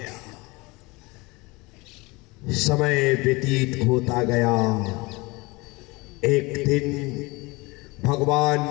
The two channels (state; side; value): quieter; right; 24.3 dB